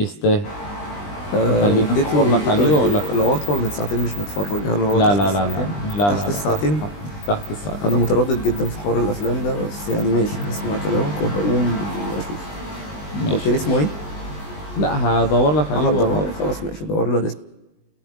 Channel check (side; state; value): right; late; 20 ms